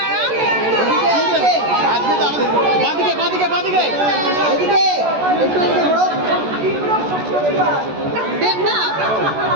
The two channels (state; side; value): late; left; 14 ms